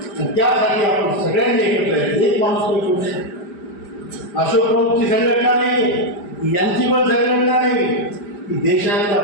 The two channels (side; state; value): right; late; 5.0 ms